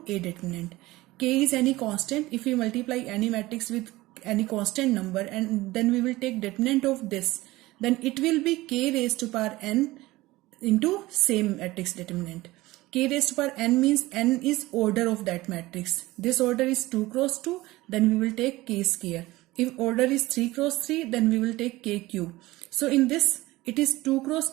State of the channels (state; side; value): quieter; left; 18.8 dB